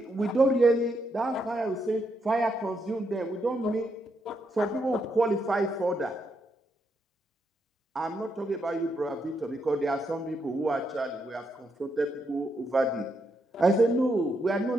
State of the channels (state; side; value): normal; both; correlation 0.80